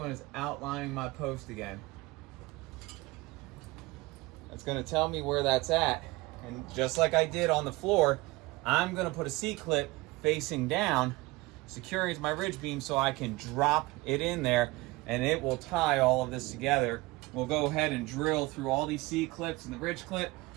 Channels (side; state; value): left; quieter; 21.8 dB